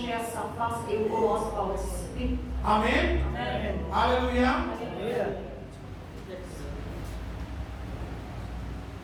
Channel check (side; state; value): both; identical; correlation 1.00